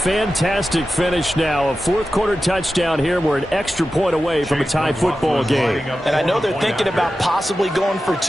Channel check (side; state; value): both; normal; correlation 0.93